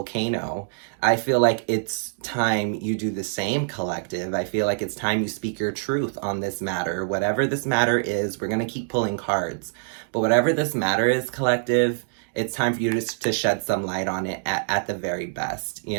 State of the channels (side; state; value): left; silent; digital silence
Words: I feel like it's time you do the same, collective. I feel like it's time you speak your truth on this matter. Whatever this matter is, we're going to keep pulling cards. But whatever this matter is, collective, it's time for you to shed some light on it at the very best,